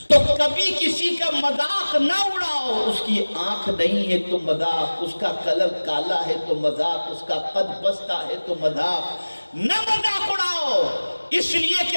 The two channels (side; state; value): both; inverted; correlation -1.00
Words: تو کبھی کسی کا مذاق نہ اڑاؤ، اس کی آنکھ نہیں ہے تو مذاق، اس کا کلر کالا ہے تو مذاق، اس کا قد پستہ ہے تو مذاق، نہ مذاق اڑاؤ، اس لیے کہ